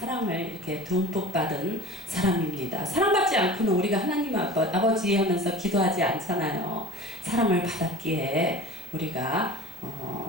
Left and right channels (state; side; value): normal; both; correlation 0.38